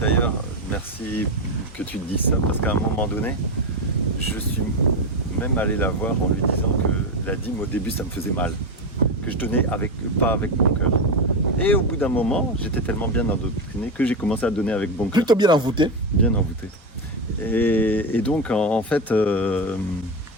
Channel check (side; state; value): both; normal; correlation 0.13